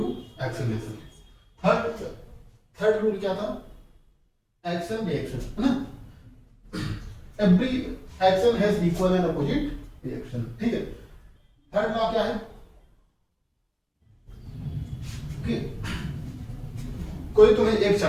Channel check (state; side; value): identical; both; correlation 1.00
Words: acceleration. Third rule क्या था? एक्शन रिएक्शन, है ना। Every action has equal and opposite reaction, ठीक है। थर्ड लॉ क्या है कि कोई तुम्हें एक